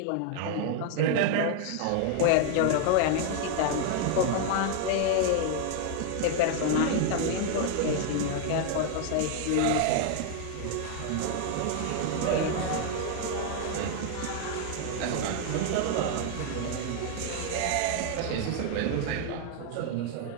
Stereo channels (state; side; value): different; both; correlation 0.00